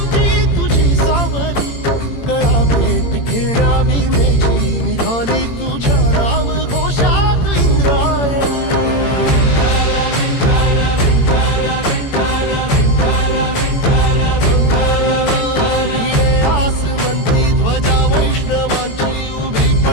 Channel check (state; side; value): late; right; 18 ms